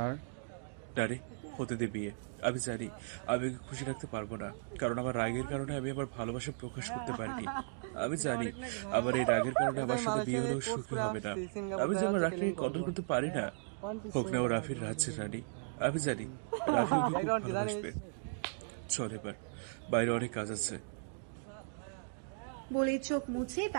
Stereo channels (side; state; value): left; silent; digital silence